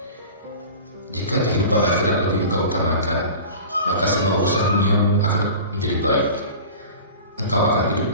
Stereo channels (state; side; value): inverted; both; correlation -0.37